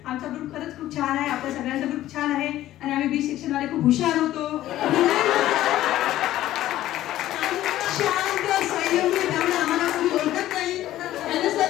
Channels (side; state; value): right; quieter; 14.0 dB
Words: आमचा ग्रुप खरंच खूप छान आहे. आपल्या सगळ्यांचा ग्रुप छान आहे. आणि आम्ही बी सेक्शन वाले खूप हुशार होतो. शांत संयमी, त्यामुळे आम्हाला कोणी ओळखत नाही.